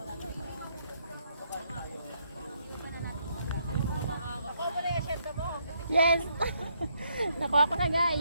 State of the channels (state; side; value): inverted; both; correlation -0.73